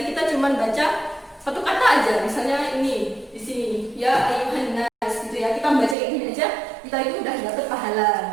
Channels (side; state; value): left; drops out; at 6.0 s